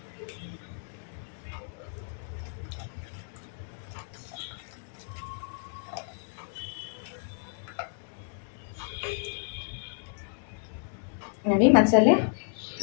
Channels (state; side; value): silent; right; 57 dB below the other